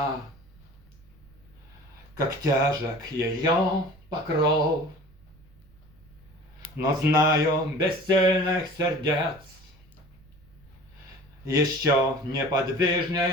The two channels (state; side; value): noise; right; rumble, 26 dB below the sound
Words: как тяжек ее покров. Но знаю, без сильных сердец еще